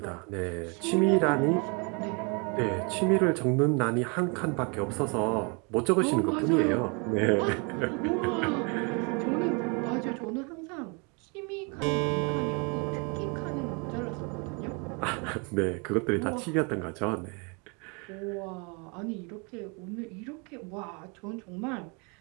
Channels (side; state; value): left; quieter; 33.0 dB